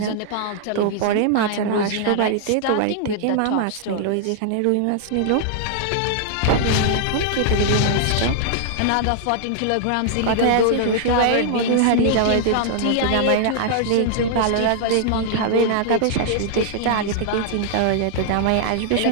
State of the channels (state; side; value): different; both; correlation -0.01